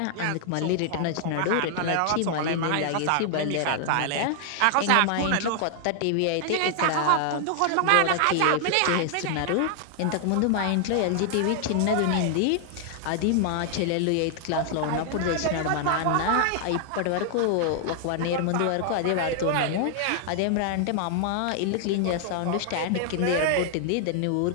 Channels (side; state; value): both; different; correlation 0.00